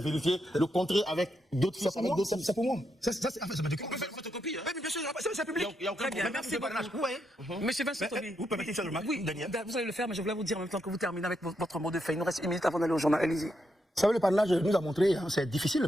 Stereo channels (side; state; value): both; normal; correlation 0.81